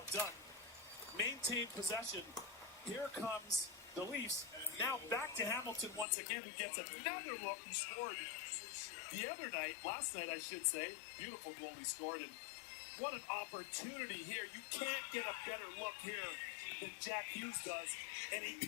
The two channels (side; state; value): right; drops out; at 6.1 s